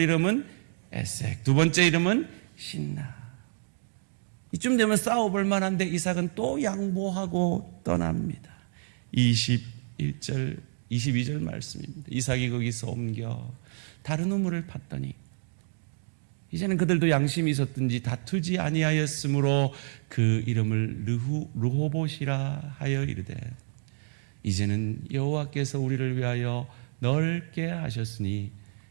이름은 에색, 두 번째 이름은 신나. 이쯤 되면 싸워볼 만한데 이삭은 또 양보하고 떠납니다. 21절, 22절 말씀입니다. 이삭이 거기서 옮겨 다른 우물을 팠더니 이제는 그들도 양심이 있었든지 다투지 아니하였으므로 그 이름을 르호봇이라 하여 이르되, 이제는 여호와께서 우리를 위하여 넓게 하셨으니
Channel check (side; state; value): left; silent; digital silence